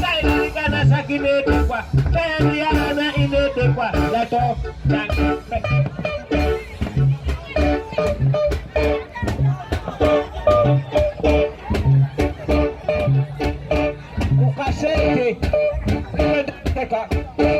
sai kanasa kinedi kwa tayari ana inede kwa lato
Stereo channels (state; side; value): identical; both; correlation 1.00